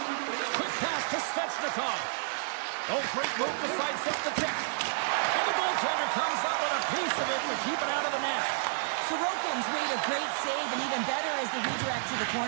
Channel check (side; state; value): left; silent; digital silence